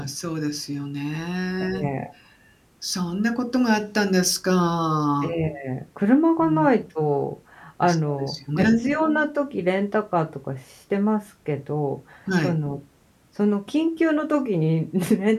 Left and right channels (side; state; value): both; identical; correlation 1.00